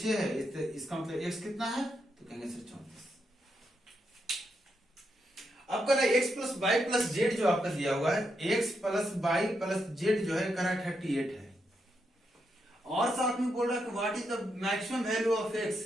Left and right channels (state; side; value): normal; both; correlation 0.82